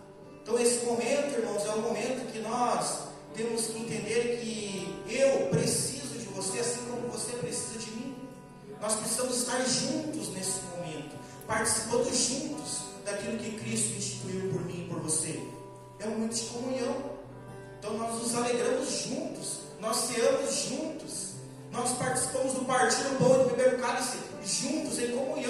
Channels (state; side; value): identical; both; correlation 1.00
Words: Então esse momento, irmãos, é um momento que nós temos que entender que eu preciso de você, assim como você precisa de mim. Nós precisamos estar juntos nesse momento, participando juntos daquilo que Cristo instituiu por mim e por você. É um momento de comunhão. Então nós nos alegramos juntos, nós ceamos juntos, nós participamos do partir do pão e do beber do cálice juntos, em